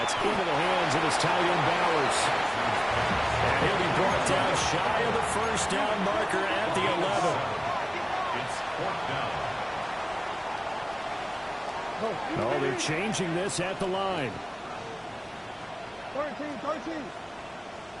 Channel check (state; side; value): identical; both; correlation 1.00